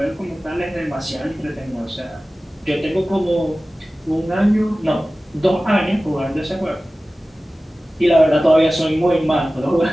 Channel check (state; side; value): normal; both; correlation 0.96